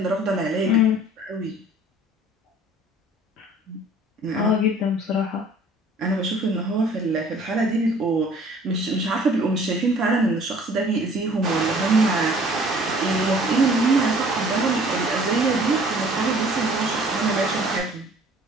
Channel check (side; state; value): both; normal; correlation 0.52